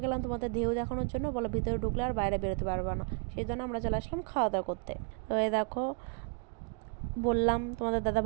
গেলাম তোমাদের ঢেউ দেখানোর জন্য, বলো ভিতরে ঢুকলে আর বাইরে বেরোতে পারবে না, সেই জন্য আমরা চলে আসলাম খাওয়া দাওয়া করতে। তো এই দেখো, বললাম তোমাদের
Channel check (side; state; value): left; quieter; 35.7 dB